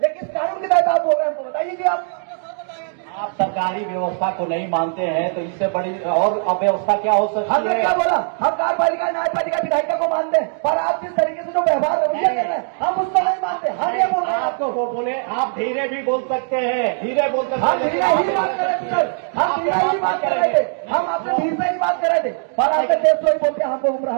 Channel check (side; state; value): left; silent; 66 dB below the other